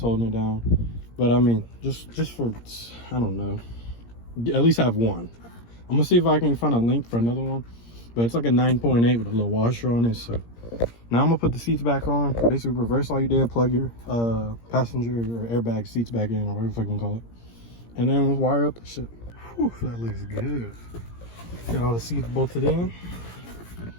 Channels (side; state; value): right; late; 17 ms